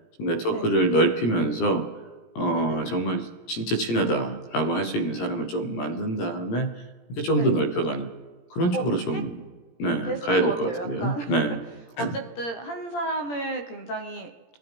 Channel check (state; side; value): late; right; 17 ms